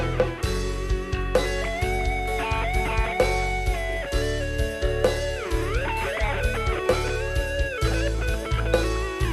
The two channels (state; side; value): identical; both; correlation 1.00